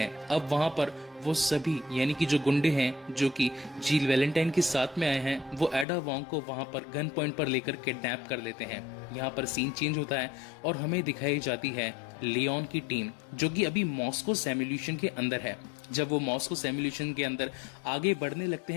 अब वहां पर वो सभी यानी कि जो गुंडे हैं जो कि जील वैलेंटाइन के साथ में आए हैं, वो एडा वोंग को वहां पर गन पॉइंट पर लेकर किडनैप कर लेते हैं। यहाँ पर सीन चेंज होता है और हमें दिखाई जाती है लियोन की टीम, जो कि अभी मॉस्को सिमुलेशन के अंदर है। जब वो मॉस्को सिमुलेशन के अंदर आगे बढ़ने लगते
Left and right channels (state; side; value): drops out; right; at 5.9 s